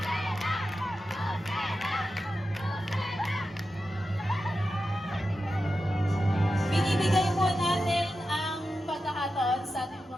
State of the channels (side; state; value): both; normal; correlation 0.91